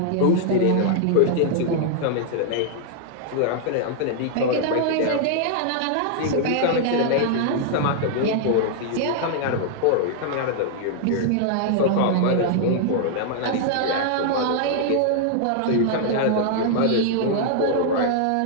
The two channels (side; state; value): both; different; correlation 0.00